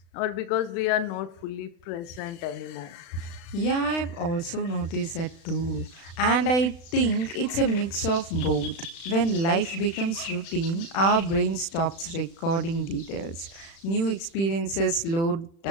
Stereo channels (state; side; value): late; right; 36 ms